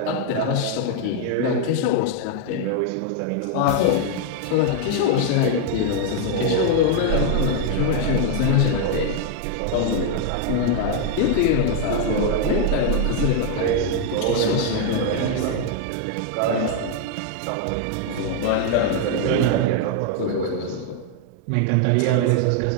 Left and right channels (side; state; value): both; different; correlation 0.00